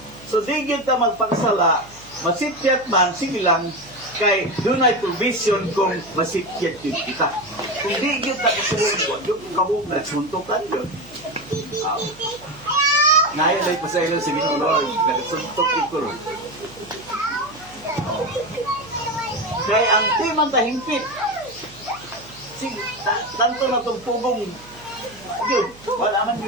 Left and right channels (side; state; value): right; noise; hum, 23 dB below the sound